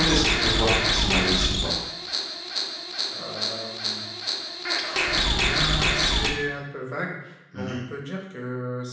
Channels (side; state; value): both; identical; correlation 1.00